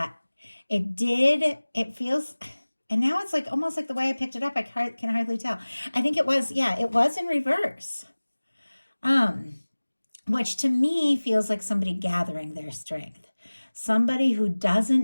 it feels, and now it's like almost like the way I picked it up, I can hardly tell. I think it was in reverse. Which to me feels like somebody gathering their strength. Somebody who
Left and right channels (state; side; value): inverted; both; correlation -1.00